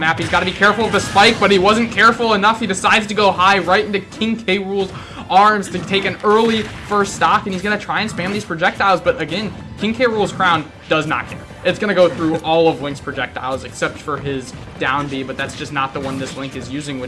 He's got to be careful of the spike, but he wasn't careful enough. He decides to go high right into King K. Rool's arms to take an early first stock, and he's going to try and spam these projectiles, but again, King K. Rool's crown does not care. It's going to go through all of Link's projectiles except for his down B, but that's just not the one this Link is using,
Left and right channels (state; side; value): identical; both; correlation 1.00